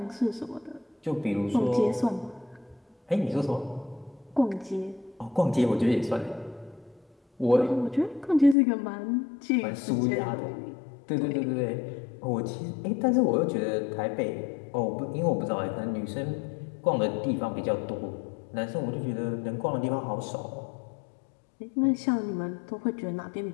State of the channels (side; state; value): right; drops out; at 8.6 s